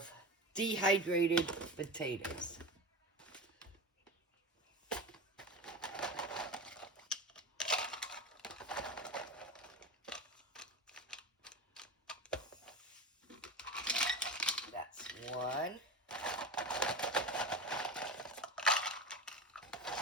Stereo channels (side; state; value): both; normal; correlation 0.27